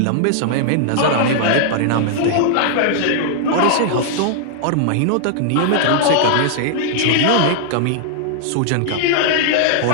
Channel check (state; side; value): different; both; correlation -0.01